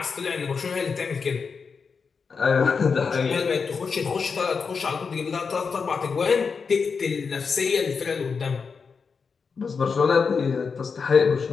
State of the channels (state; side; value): quieter; right; 5.4 dB